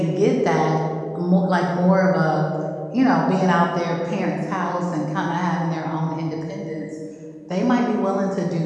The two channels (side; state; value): both; identical; correlation 1.00